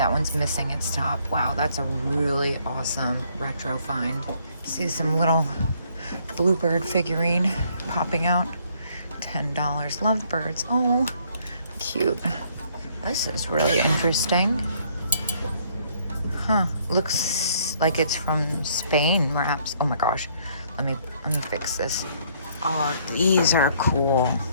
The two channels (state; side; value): inverted; both; correlation -0.66